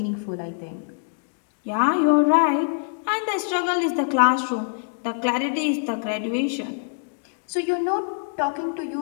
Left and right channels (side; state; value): right; silent; digital silence